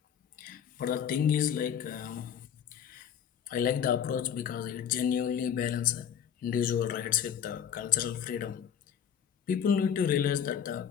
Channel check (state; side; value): quieter; right; 8.5 dB